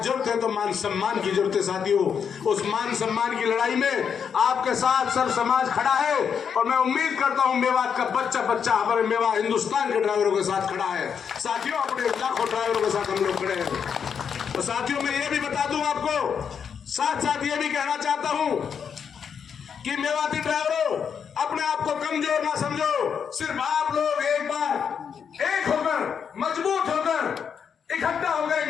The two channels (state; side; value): quieter; right; 7.1 dB